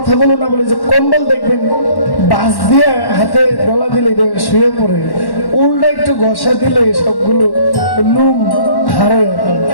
না বলে যে কম্বল দেখবেন বাস দিয়ে হাতে গলা দিলে শুয়ে পড়ে, উল্টা একটু ঘষা দিলে সবগুলো লুম হারে।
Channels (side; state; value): right; late; 1.1 ms